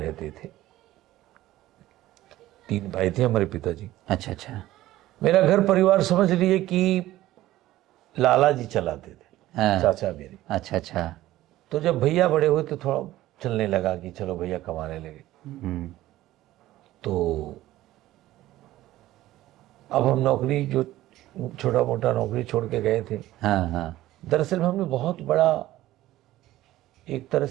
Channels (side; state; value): left; quieter; 15.5 dB